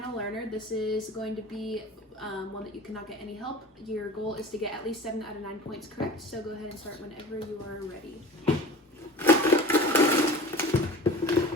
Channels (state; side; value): normal; both; correlation 0.38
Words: learner. This is going to be one that you cannot get any help. Your goal is to get at least 7 out of 9 points correct, so go ahead and start whenever you are ready.